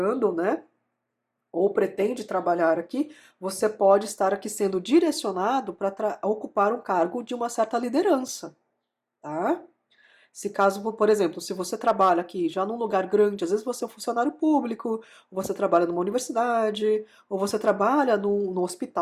né? Ou pretende trabalhar aqui, você pode estar aqui sendo direcionado para ocupar um cargo de uma certa liderança, tá? Se caso, por exemplo, se você trabalha aqui já num lugar grande, às vezes você é um funcionário público, ou você trabalha numa universidade, ou você trabalha num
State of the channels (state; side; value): identical; both; correlation 1.00